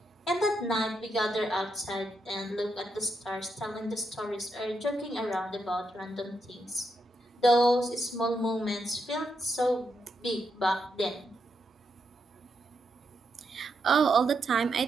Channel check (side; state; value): both; normal; correlation 0.82